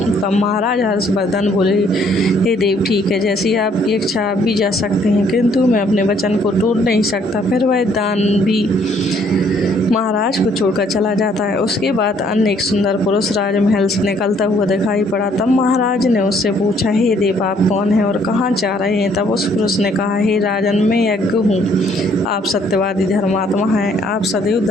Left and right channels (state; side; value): normal; both; correlation 0.64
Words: तब महाराज हर्षवर्धन बोले, हे देव, ठीक है, जैसी आपकी इच्छा आप भी जा सकते हैं, किंतु मैं अपने वचन को तोड़ नहीं सकता। फिर वह दान भी महाराज को छोड़कर चला जाता है। उसके बाद अन्य एक सुंदर पुरुष राजमहल से निकलता हुआ दिखाई पड़ा। तब महाराज ने उससे पूछा, हे देव, आप कौन हैं और कहाँ जा रहे हैं? तब उस पुरुष ने कहा, हे राजन, मैं यज्ञ हूँ। आप सत्यवादी धर्मात्मा हैं, आप सदैव